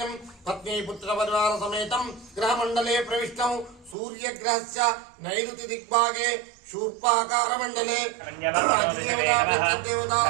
पत्नी पुत्रपरिवार समेतं ग्रहमण्डले प्रविष्टं सूर्यग्रहस्य नैऋति दिग्भागे शूर्पाकारमण्डले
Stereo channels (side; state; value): left; drops out; at 4.0 s